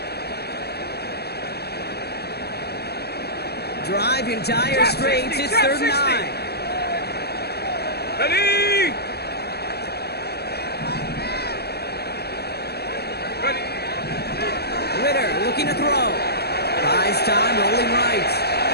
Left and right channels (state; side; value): late; right; 0.47 ms